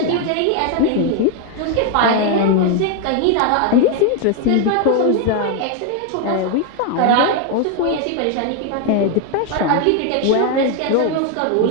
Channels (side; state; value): both; different; correlation 0.01